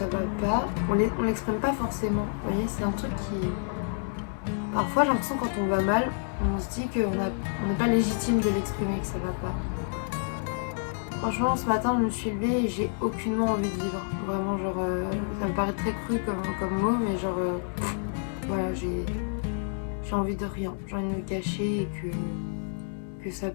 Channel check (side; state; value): right; silent; 59 dB below the other